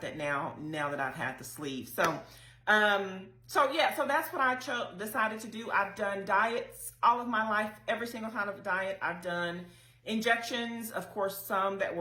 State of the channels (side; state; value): both; identical; correlation 1.00